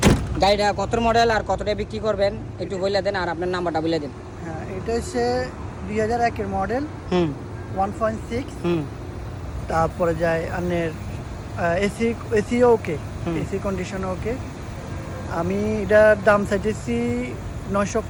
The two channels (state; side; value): identical; both; correlation 1.00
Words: গাড়িটা কত মডেল আর কতটা বিক্রি করবেন একটু বলে দেন, আর আপনার নাম্বারটা বলে দেন। হ্যাঁ, এটা হচ্ছে 2001-এর মডেল, 1.6। তারপরে যায় আনের AC okay, AC condition okay. আমি এটার দাম চাইতেছি